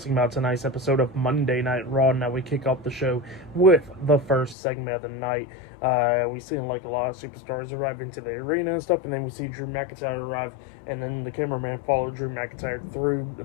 about tonight's episode of Monday Night Raw. Now we kick off the show with the first segment of the night. We see like a lot of superstars arrive into the arena and stuff, and then we see Drew McIntyre arrive, and then the cameraman followed Drew McIntyre through the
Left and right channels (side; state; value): right; drops out; at 4.5 s